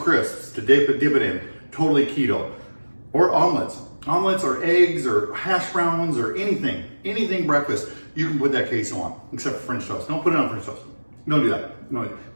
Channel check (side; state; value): both; inverted; correlation -1.00